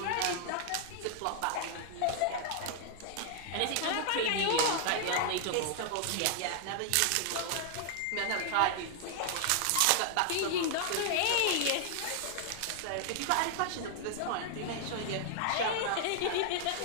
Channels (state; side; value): different; both; correlation 0.00